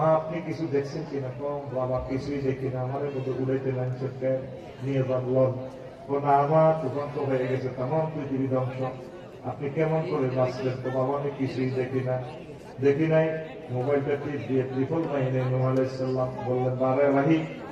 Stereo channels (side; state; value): both; identical; correlation 1.00